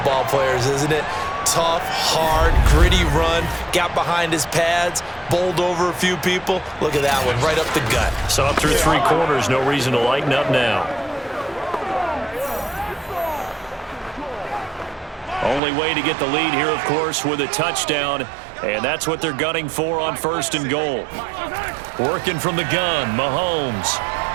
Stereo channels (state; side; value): drops out; left; at 15.6 s